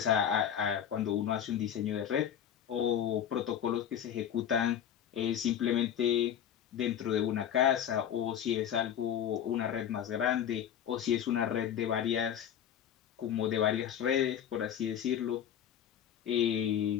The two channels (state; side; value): quieter; right; 9.5 dB